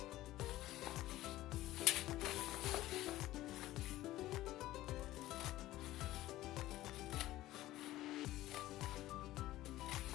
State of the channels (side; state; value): right; quieter; 15.8 dB